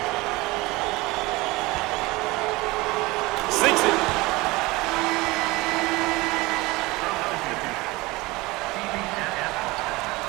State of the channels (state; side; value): quieter; left; 21.9 dB